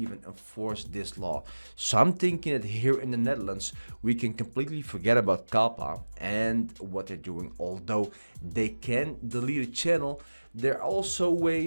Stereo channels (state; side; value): inverted; both; correlation -1.00